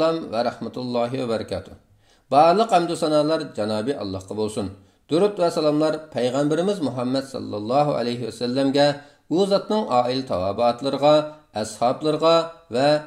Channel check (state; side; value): identical; both; correlation 1.00